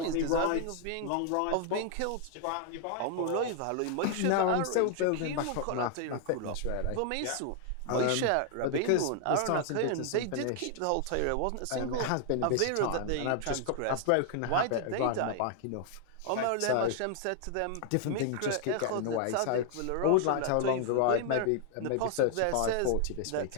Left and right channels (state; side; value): different; both; correlation 0.00